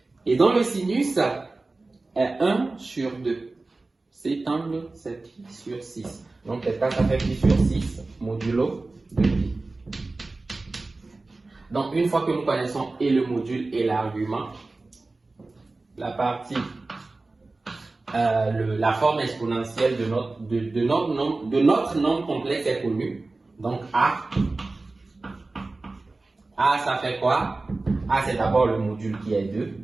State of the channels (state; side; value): quieter; left; 3.3 dB